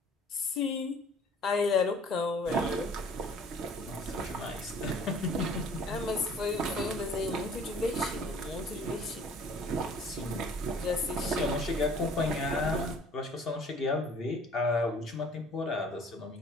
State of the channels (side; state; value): both; normal; correlation 0.53